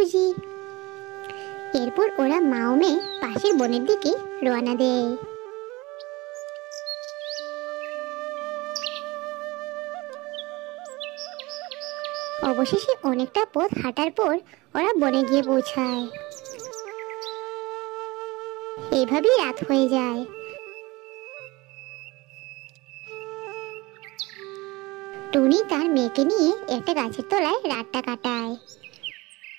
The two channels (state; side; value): quieter; left; 22.4 dB